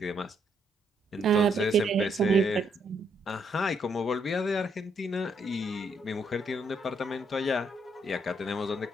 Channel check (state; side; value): normal; both; correlation 0.73